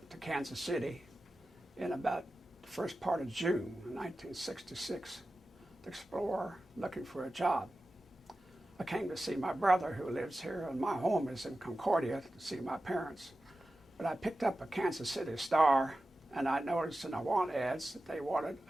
to Kansas City in about the first part of June of 1966 to explore, looking for a job. I came to see my brother who lives here, and my home is in Concordia, to see my parents. But I picked up a Kansas City Star, and I noticed in the want ads that they wanted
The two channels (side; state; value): both; normal; correlation 0.94